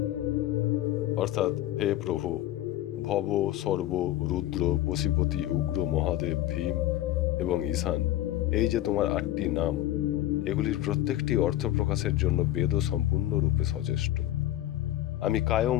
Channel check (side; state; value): right; quieter; 14.1 dB